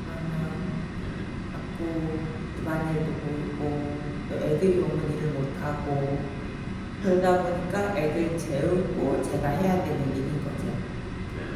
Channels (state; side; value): identical; both; correlation 1.00